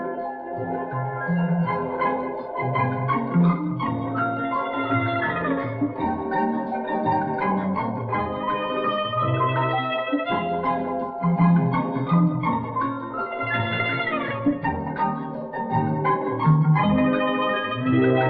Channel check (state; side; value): identical; both; correlation 1.00